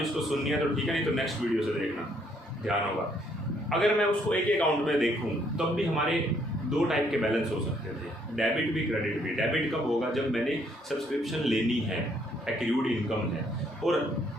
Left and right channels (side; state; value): both; normal; correlation 0.68